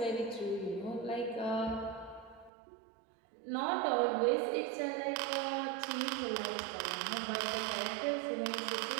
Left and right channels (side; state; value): left; drops out; at 2.5 s